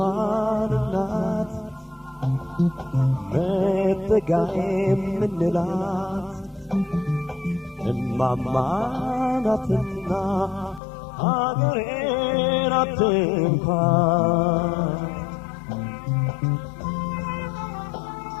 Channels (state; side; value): drops out; right; at 10.8 s